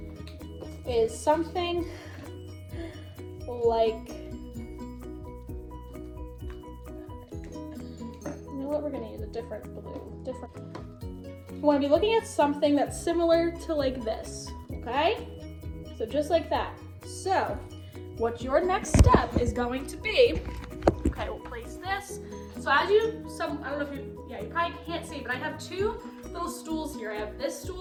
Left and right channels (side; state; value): both; identical; correlation 1.00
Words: is something like, we're going to use a different blue. You want to be looking at something that's similar to like this, okay? So just like that. So what your next step is going to be, okay, we'll place this. So as I don't know if you probably can't see, but I have 2 little stools here. I have this